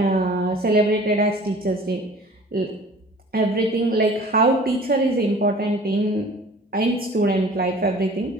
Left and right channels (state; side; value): normal; both; correlation 0.47